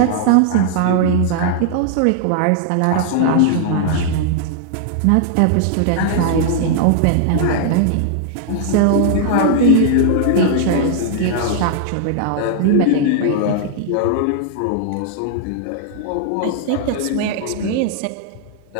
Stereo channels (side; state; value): both; different; correlation 0.00